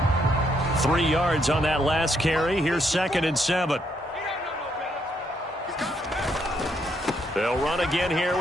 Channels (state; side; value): normal; both; correlation 0.74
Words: Three yards on that last carry. Here's 2nd and 7. They'll run again here